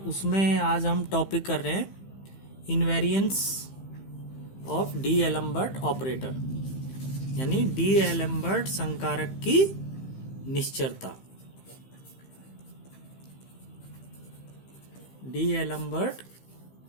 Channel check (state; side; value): late; right; 15 ms